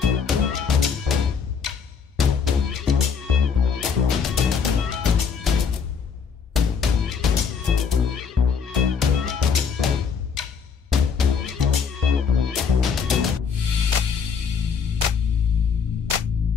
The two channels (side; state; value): right; quieter; 6.2 dB